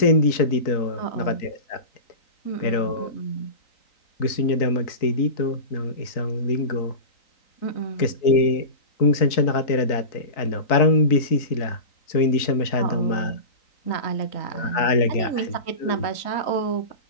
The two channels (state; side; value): late; right; 3.9 ms